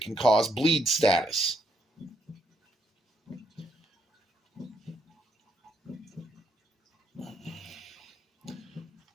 cause bleed status.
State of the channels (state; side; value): normal; both; correlation 0.74